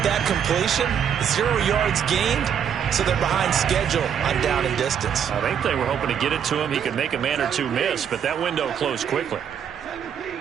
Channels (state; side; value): quieter; left; 8.2 dB